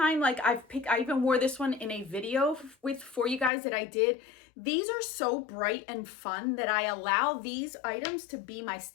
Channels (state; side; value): drops out; right; at 3.5 s